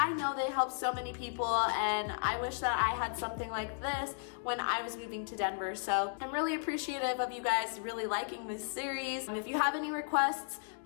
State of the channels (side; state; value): right; silent; digital silence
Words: know they help so many people, and I wish that I had something like this when I was moving to Denver. So I'm really appreciative of you guys really liking this series. And if you have any requests,